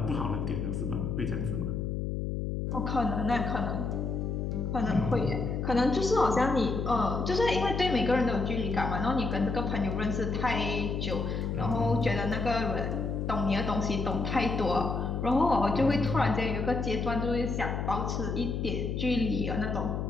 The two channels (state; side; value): noise; left; hum, 2 dB below the sound